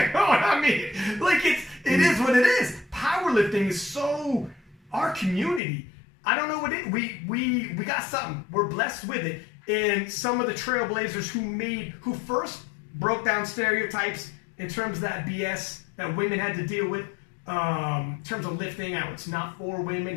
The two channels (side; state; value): right; drops out; at 5.6 s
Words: know what I mean? Like, it is what it is. Powerlifting is so our community. I don't know what it is. We got something. We're blessed with it. And some of the trailblazers who first broke down stereotypes in terms of that BS that women had to deal with. In terms of lifting, how it's not for